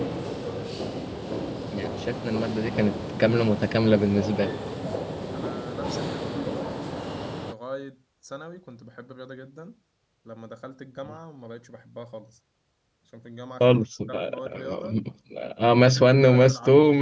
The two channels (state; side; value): identical; both; correlation 1.00